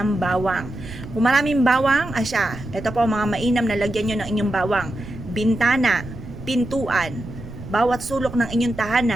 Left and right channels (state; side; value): noise; right; rumble, 13 dB below the sound